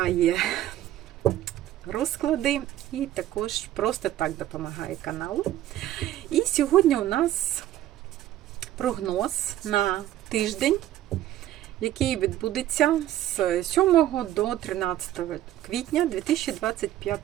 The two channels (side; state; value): left; quieter; 13.2 dB